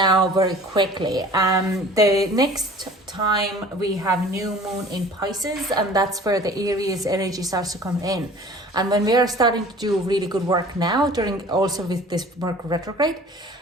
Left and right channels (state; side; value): normal; both; correlation 0.46